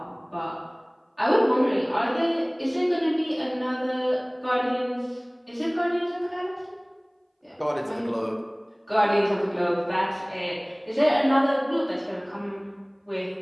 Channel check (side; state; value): both; identical; correlation 1.00